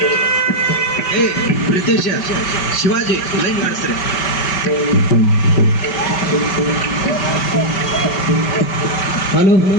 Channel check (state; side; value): late; right; 5.1 ms